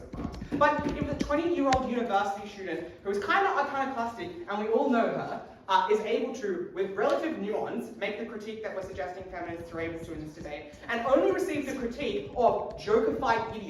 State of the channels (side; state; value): both; identical; correlation 1.00